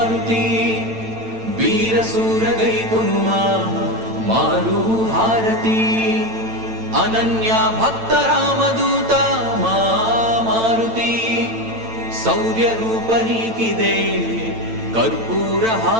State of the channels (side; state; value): left; late; 8.9 ms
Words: వీర సూరగై కొనుమా మారు హారతి అనన్య భక్త రామదూత మా మారుతి శౌర్య రూప నీకిదే కర్పూర